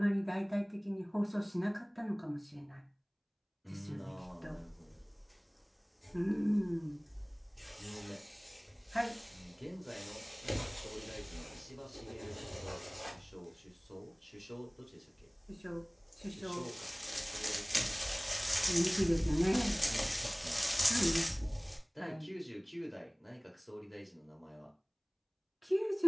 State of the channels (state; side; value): identical; both; correlation 1.00